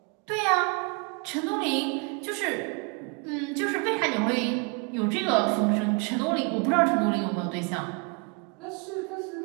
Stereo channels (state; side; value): quieter; left; 32.8 dB